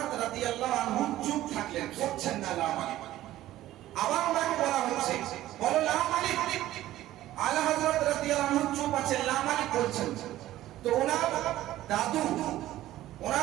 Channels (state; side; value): quieter; left; 14.6 dB